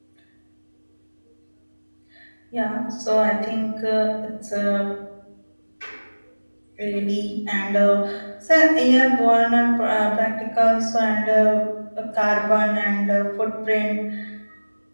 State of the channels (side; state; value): both; inverted; correlation -1.00